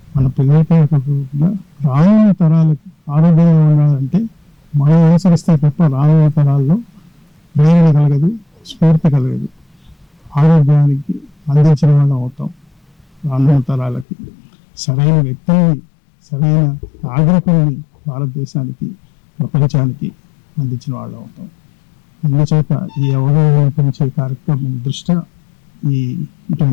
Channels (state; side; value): drops out; right; at 14.1 s